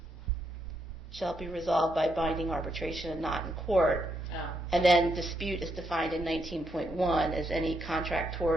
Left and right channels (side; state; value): both; normal; correlation 0.79